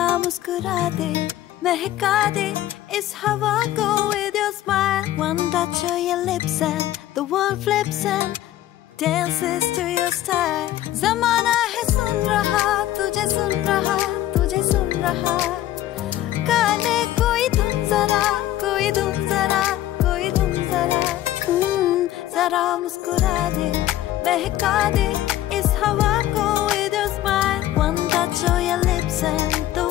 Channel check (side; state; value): right; quieter; 13.8 dB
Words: मुस्कुरा दे, महका दे इस हवा को with your smile. One touch of your lips and the world flips and dances to your style. ज़माना है सुन रहा, तुझे सुन रहा, तुझे सुन रहा। काने कोई धुन जरा, कोई धुन जरा, कोई धुन जरा। जरा मुस्कुरा दे, महका दे इस हवा को with your smile. One touch of your lips and the